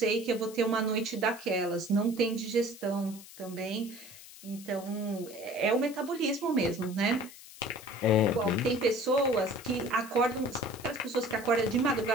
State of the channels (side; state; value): left; noise; hiss, 18 dB below the sound